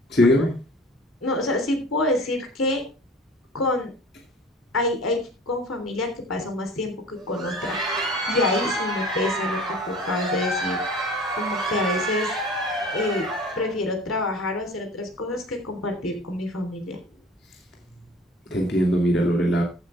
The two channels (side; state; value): both; normal; correlation 0.44